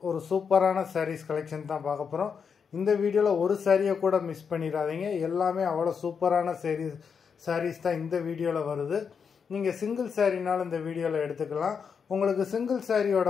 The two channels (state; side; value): quieter; right; 6.4 dB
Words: ஒரு சூப்பரான சாரீஸ் கலெக்ஷன் தான் பார்க்க போகிறோம். இந்த வீடியோவில் ஒரு சாரியை கூட மிஸ் பண்ணிடாதீங்க. எல்லாமே அவ்வளோ சூப்பரான சாரீஸ் தான் இந்த வீடியோவில் வருது. நீங்கள் சிங்கிள் சாரினாலும் இந்த வீடியோவில் எடுத்துக்கலாம். உங்களுக்கு சிங்கிள்